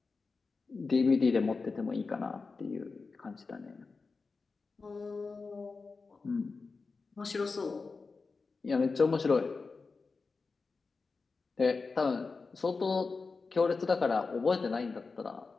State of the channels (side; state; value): right; quieter; 4.3 dB